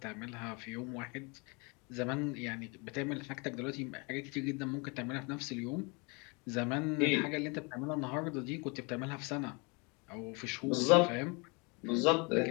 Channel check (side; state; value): right; quieter; 30.4 dB